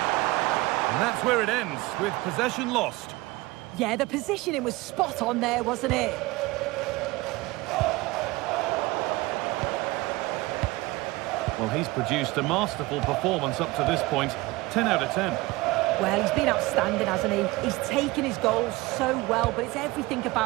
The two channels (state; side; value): quieter; left; 21.0 dB